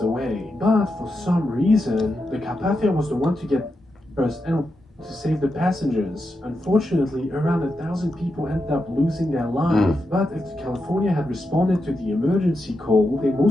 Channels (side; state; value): both; normal; correlation 0.86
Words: away. But for some reason, the Carpathia was the one to get first and to save the passengers. Unfortunately, around 1,000 people ended up losing their life. But if the California had responded to the emergency call, they